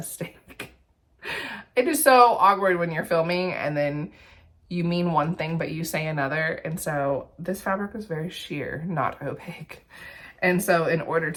It is so awkward when you're filming and then you mean one thing, but you say another. And so this fabric was very sheer, not opaque. And so in order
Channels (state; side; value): identical; both; correlation 1.00